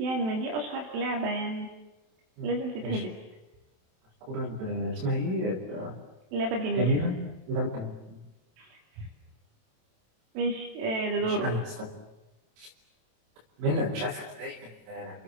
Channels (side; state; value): left; late; 27 ms